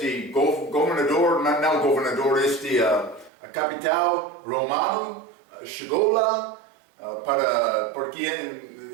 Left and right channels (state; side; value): drops out; left; at 3.3 s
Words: governador, não governador, a capital romano chegou lá para